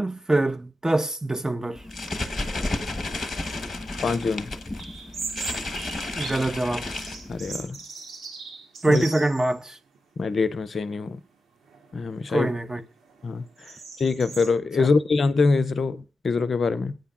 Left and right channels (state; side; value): normal; both; correlation 0.90